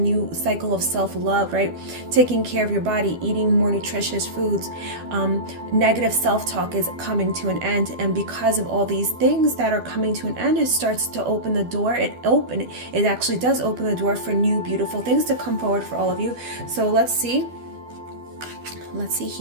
cycle of self-love, right? Taking care of your body, eating more nutritious foods. Negative self-talk is coming to an end, and because of all these things that are coming to an end, it starts to open the door. It actually does open the door for new beautiful things to come forward for all of you. So let's see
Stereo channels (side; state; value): left; late; 12 ms